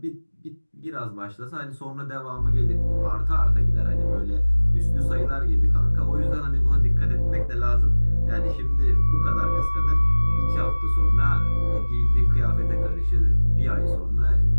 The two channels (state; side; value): inverted; both; correlation -1.00